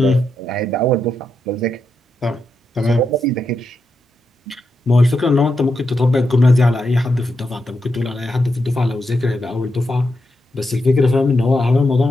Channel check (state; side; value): normal; both; correlation 0.85